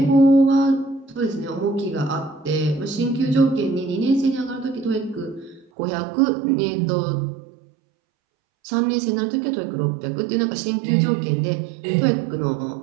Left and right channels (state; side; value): drops out; left; at 5.7 s